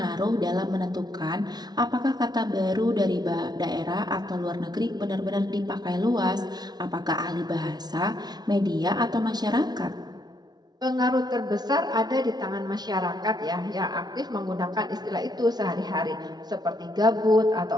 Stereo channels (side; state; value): left; late; 0.19 ms